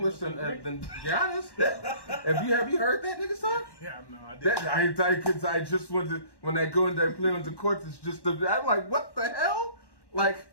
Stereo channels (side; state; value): right; late; 1.1 ms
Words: than Giannis. Have you heard that nigga talk? Yeah, no, I did. I just when they go and they play on the court, it's just I'm like, what the hell? Like